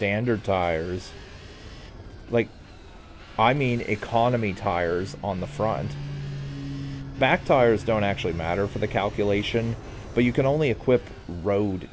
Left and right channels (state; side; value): identical; both; correlation 1.00